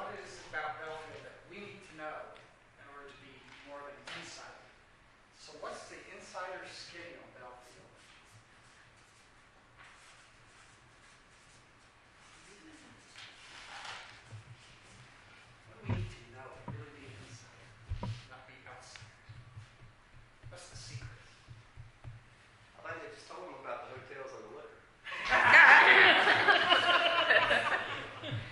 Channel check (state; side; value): identical; both; correlation 1.00